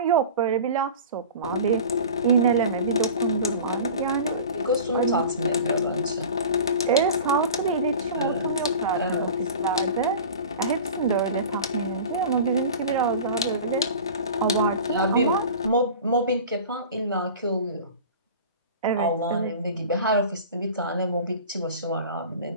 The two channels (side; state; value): both; inverted; correlation -0.37